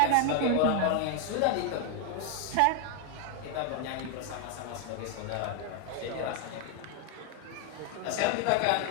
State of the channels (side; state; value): both; different; correlation 0.01